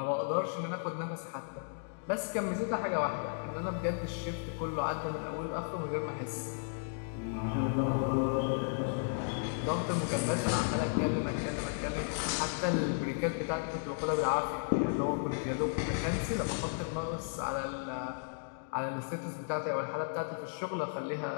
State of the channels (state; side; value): silent; right; digital silence